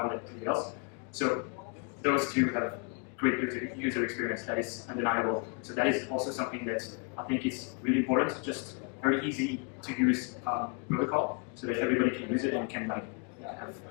that prevails. So those two have great user experience. That is undeniable. So that is also something that I think is really important. Just very easy to use protocol, so that everybody can use it and can have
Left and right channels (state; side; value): quieter; right; 36.5 dB